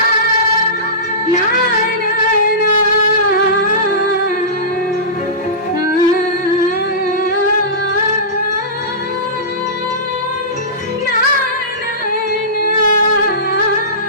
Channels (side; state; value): both; normal; correlation -0.20